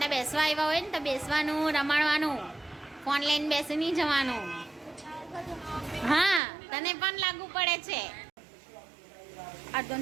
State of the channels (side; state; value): left; drops out; at 6.4 s